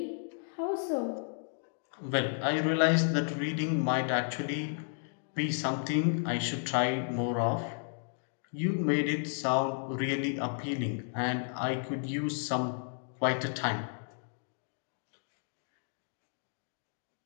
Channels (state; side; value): silent; right; digital silence